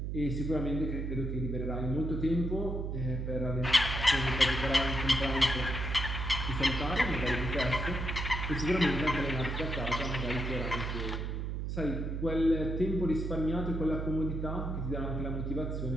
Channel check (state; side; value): noise; right; hum, 2 dB below the sound